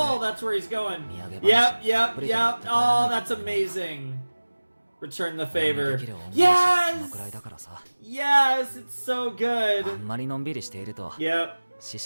That's where he's going. Yep. Oh, that's amazing. Return the favor. Yes! Yes, it's so good. あんまりのんびりしていると Yep. 師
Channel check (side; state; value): both; inverted; correlation -1.00